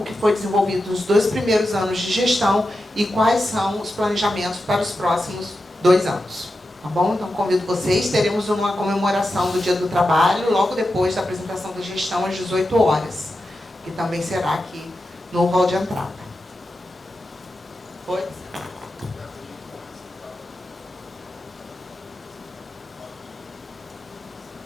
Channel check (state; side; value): normal; both; correlation 0.90